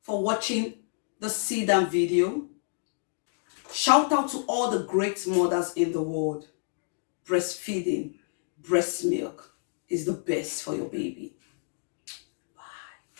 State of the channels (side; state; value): right; silent; digital silence